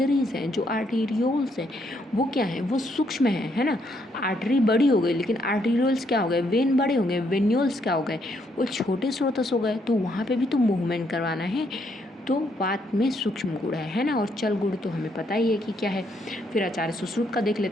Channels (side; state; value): both; normal; correlation 0.73